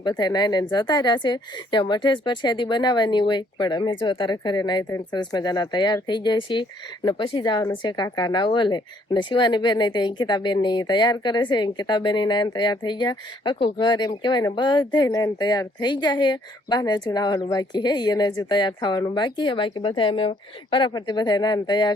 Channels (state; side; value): normal; both; correlation 0.65